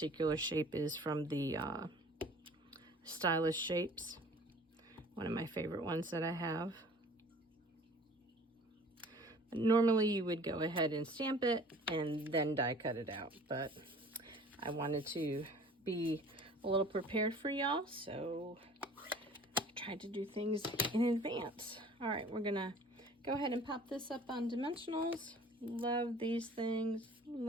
shape is from the Stylish Shapes, one of my favorite ones that I have. Normally you would go ahead and stamp it and then die cut it out, but I wanted to be a little prepared for y'all, so I tried to do things in advance. All right, we're gonna go ahead and pop this up on dimensionals. Love these things,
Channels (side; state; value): both; normal; correlation 0.48